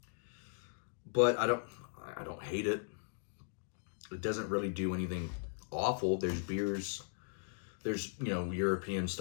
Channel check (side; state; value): right; silent; digital silence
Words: But I don't hate it. It doesn't really do anything awful. There's beers, there's, European